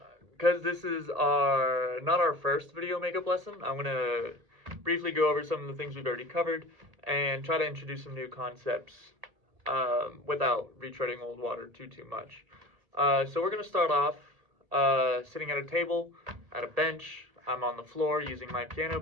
Because this is not our first video makeup lesson, I'm going to briefly go over some of the things we've already covered and try to introduce some new concepts without retreading old water too much. So we're going to start off sitting at a table, at a bench. I'm on the floor using my piano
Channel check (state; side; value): late; left; 1.8 ms